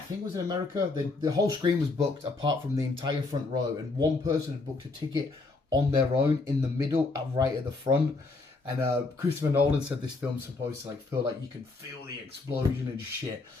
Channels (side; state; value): right; quieter; 3.6 dB